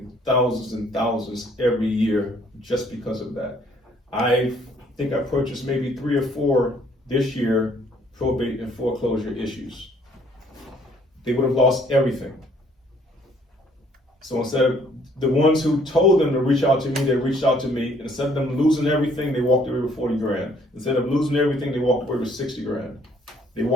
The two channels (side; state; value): both; normal; correlation 0.62